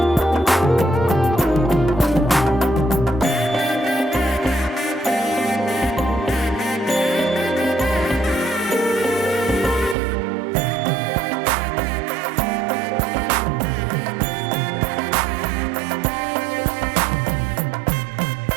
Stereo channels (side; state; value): left; drops out; at 10.0 s